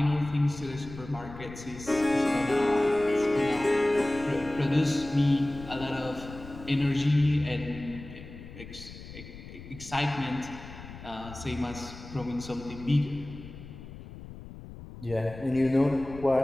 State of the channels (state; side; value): noise; left; rumble, 14 dB below the sound